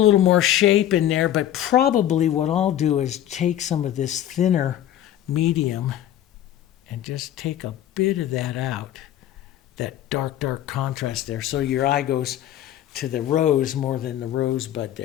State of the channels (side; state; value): right; quieter; 11.8 dB